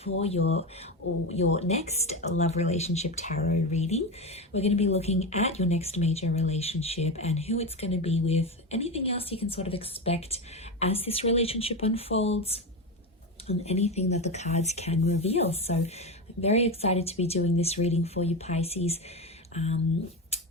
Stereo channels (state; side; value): normal; both; correlation 0.18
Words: for your next love relationship tarot reading. We're going to be looking at your next major relationship and who it's going to be with, anything else you can sort of expect as this relationship unfolds, and anything that the cards can reveal. So I'm very excited to be doing this reading for you Pisces.